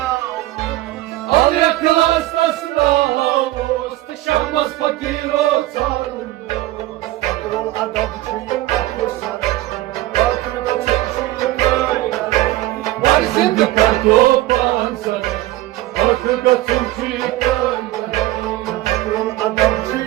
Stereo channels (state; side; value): quieter; left; 16.6 dB